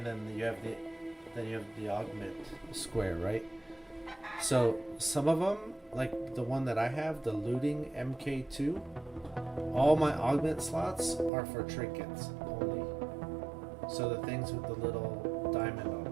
then you have the augment square, right? So some of them, like the one that I have, the looting MK2, all my augment slots are for trinkets only. So the things with the little diamond on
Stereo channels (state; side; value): drops out; left; at 11.3 s